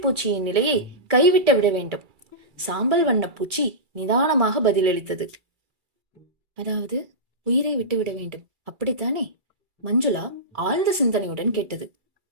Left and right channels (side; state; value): left; late; 2.3 ms